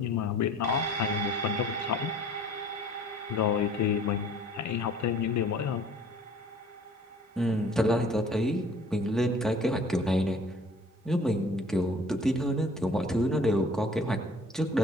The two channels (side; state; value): both; normal; correlation 0.51